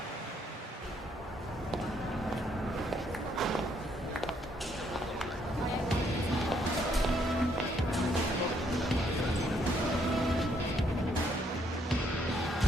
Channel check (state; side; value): normal; both; correlation 0.70